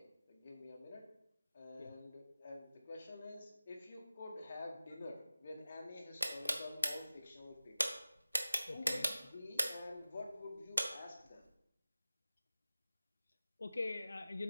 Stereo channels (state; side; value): inverted; both; correlation -0.96